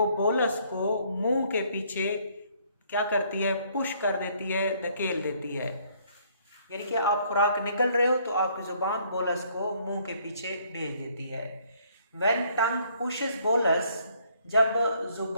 बोलस को मुंह के पीछे क्या करती है, पुश कर देती है, धकेल देती है। यानी कि आप खुराक निगल रहे हो तो आपकी जुबान बोलस को मुंह के पीछे भेज देती है। व्हेन टंग पुशेस बोलस, जब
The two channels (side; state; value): both; inverted; correlation -0.65